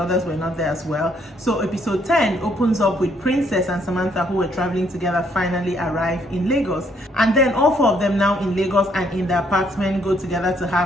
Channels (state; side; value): normal; both; correlation 0.69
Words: others were not there as well. So episode 10 opens up with Princess and Samantha, who were traveling together, finally arrive in Lagos. And then all four of them now in Lagos and in the apartment go together to